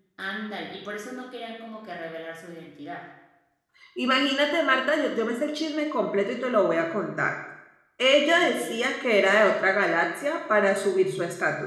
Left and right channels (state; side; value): identical; both; correlation 1.00